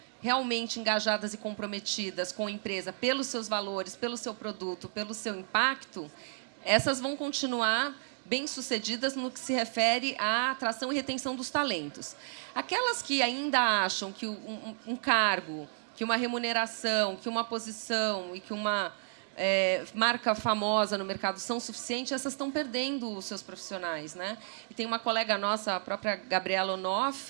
realmente engajadas e comprometidas com a empresa pelos seus valores, pelo seu produto, pelo seu impacto, essas vão continuar bem-sucedidas no que se refere à atração e retenção dos talentos. Aquelas que ainda acham que um cargo, que uma remuneração, que uma posição e que uma marca famosa no mercado são suficientes, essas estão perdendo os seus profissionais, né? E tem uma colega nossa, a própria Gabriela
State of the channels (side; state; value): left; silent; digital silence